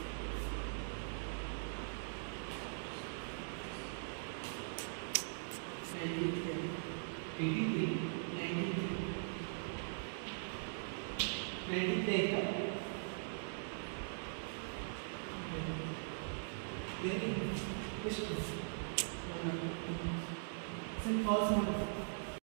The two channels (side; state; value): left; silent; digital silence